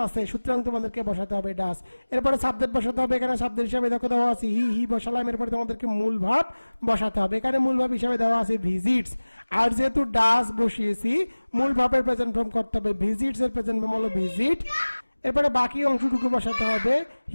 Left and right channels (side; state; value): both; inverted; correlation -1.00